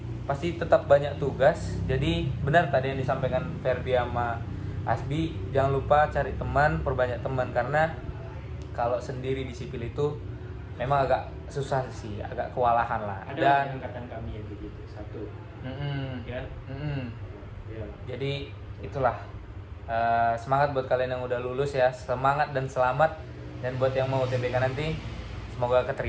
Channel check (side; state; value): both; identical; correlation 1.00